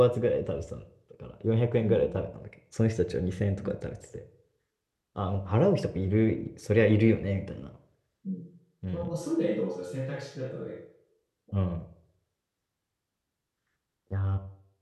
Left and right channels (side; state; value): both; identical; correlation 1.00